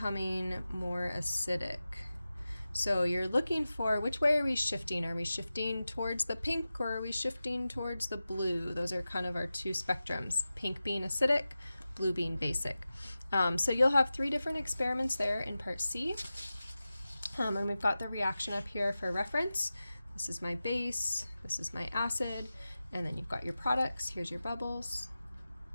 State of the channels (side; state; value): both; inverted; correlation -0.94